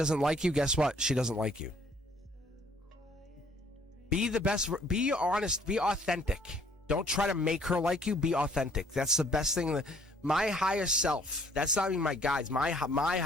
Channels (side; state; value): both; normal; correlation 0.61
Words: like you. Guess what? She doesn't like you. Be the best. Be honest. Be authentic. Don't try to make her like you. Be authentic. That's the best thing. My highest self, that's not even my guides. My